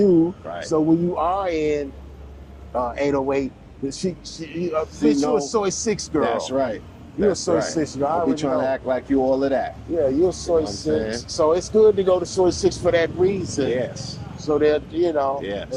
Right. So when you are in 808, you're a Soy 6 girl. That's right. You're a Soy 6 girl. Don't be trying to act like you all of that. Yeah, you're a Soy 6. So it's good to go to Soy 6 for that reason. Yes. So that, and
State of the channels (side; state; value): both; identical; correlation 1.00